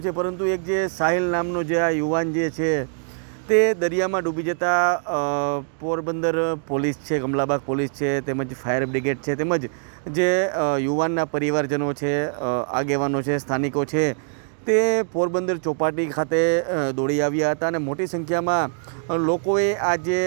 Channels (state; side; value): silent; left; 58 dB below the other